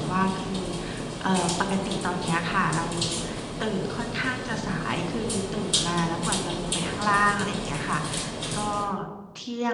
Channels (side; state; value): both; identical; correlation 1.00